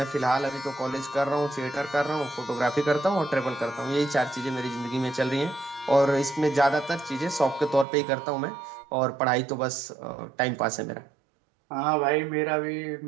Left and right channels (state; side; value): drops out; left; at 7.9 s